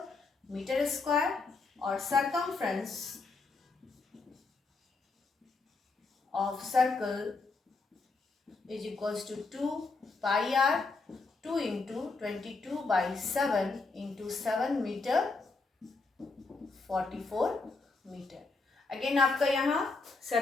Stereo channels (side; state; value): right; quieter; 3.9 dB